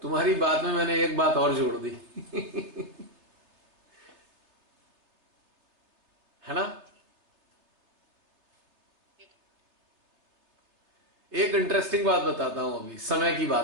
तुम्हारी बात में मैंने एक बात और जोड़ दी। है ना? जी। एक इंटरेस्टिंग बात बताता हूं, अभी समय की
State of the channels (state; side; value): late; left; 3.3 ms